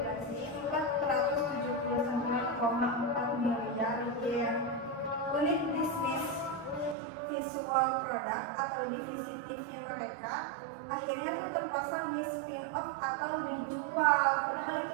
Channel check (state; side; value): drops out; left; at 7.0 s